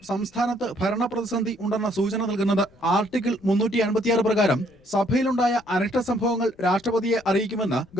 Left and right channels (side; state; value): left; noise; rumble, 30 dB below the sound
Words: സംസ്ഥാനത്ത് ഭരണ പ്രതിസന്ധി ഉണ്ടെന്ന സൂചന നൽകുന്നത്. ആർട്ടിക്കിൾ 356 പ്രകാരം സഭയിലുണ്ടായ അനിഷ്ട സംഭവങ്ങൾ രാഷ്ട്രപതിയെ അറിയിക്കുമെന്ന്